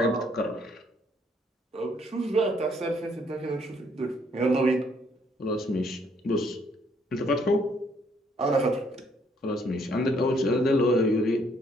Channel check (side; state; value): both; normal; correlation 0.67